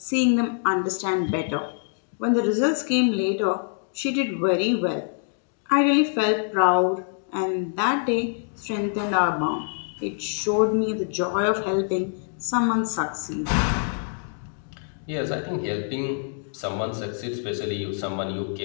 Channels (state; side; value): silent; right; digital silence